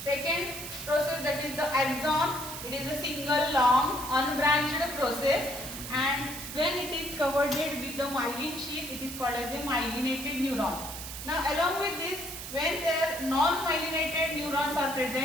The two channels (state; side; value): noise; right; hiss, 9 dB below the sound